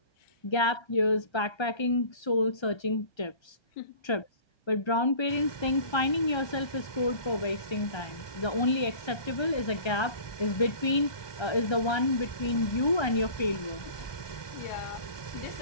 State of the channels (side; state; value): right; late; 1.2 ms